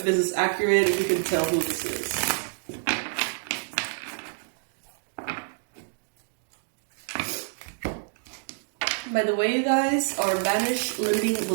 this is accurate, if you can tell who this is. By the way, you guys, our Banish Limiting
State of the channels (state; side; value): silent; left; digital silence